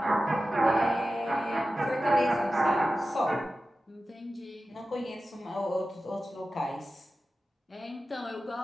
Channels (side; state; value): both; normal; correlation 0.94